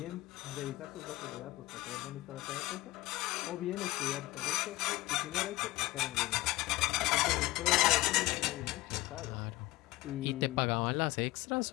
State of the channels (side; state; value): right; quieter; 19.3 dB